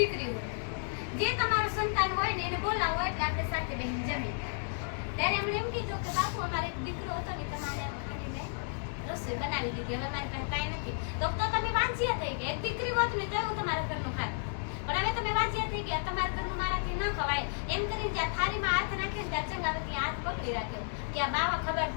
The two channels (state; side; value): silent; right; digital silence